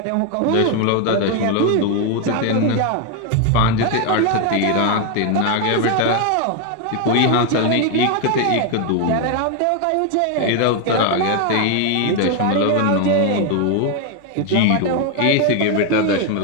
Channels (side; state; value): both; different; correlation 0.01